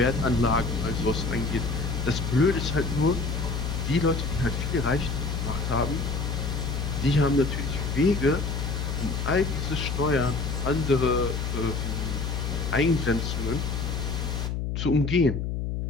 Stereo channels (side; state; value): left; noise; hum, 2 dB below the sound